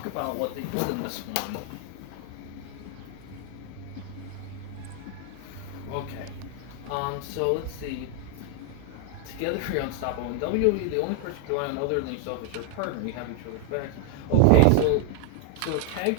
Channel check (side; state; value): both; different; correlation 0.01